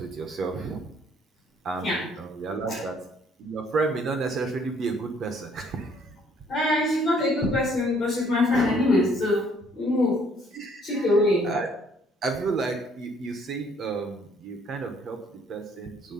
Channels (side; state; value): both; normal; correlation 0.62